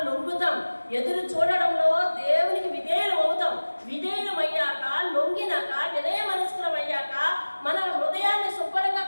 లొంగుతాం. ఎదురు చూడడంలో దేవునికి విధేయులు అవుతాం. విధేయులం అయ్యాక, లొంగినాక, వినయ మనస్కులం అయ్యాక, మన హృదయాన్ని శుభ్రంగా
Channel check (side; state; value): both; inverted; correlation -1.00